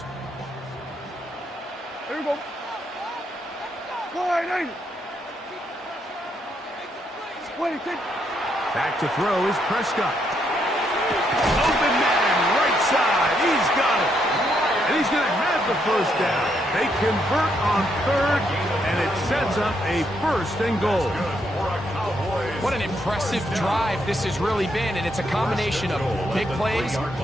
There you go. Back to throw is Prescott. Open man, right side. He's got it. And he's going to have the first down. They convert on third, and it sets up a first and goal. What an impressive drive this has really been, and it's a combination of big plays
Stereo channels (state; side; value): normal; both; correlation 0.76